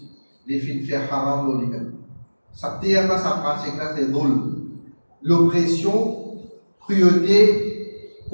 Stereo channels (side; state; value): both; inverted; correlation -1.00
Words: les films fait haram dans lui-même. Ça terme, sa pratique-là, c'est dhul. L'oppression, cruauté,